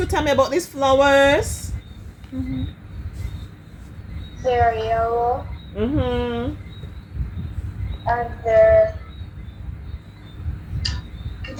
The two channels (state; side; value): identical; both; correlation 1.00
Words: tell me about these flowers. They're yellow Mm-hmm. and